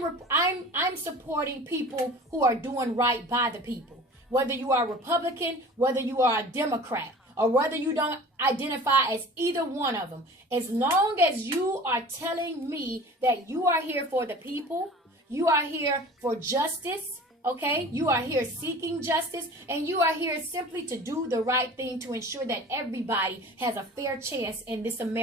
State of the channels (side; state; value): both; normal; correlation 0.41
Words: supporting people who are doing right by the people. Whether you are a Republican, whether you are a Democrat, or whether you don't identify as either one of them. As long as you are telling me that you are here for the people, you are here for justice, okay? You are here seeking justice, and you are here simply to do the right thing to ensure that everybody has a fair chance in this